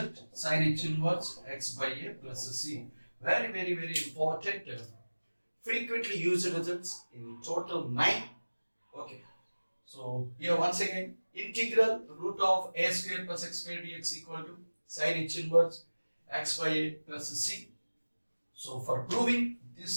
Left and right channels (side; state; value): both; inverted; correlation -1.00